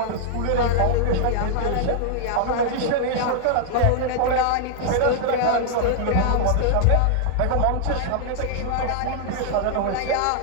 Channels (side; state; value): both; different; correlation -0.01